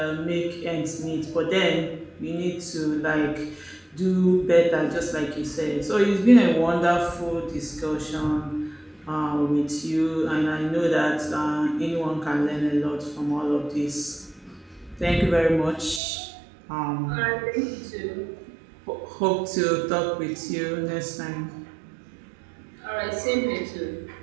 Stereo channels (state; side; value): drops out; left; at 16.0 s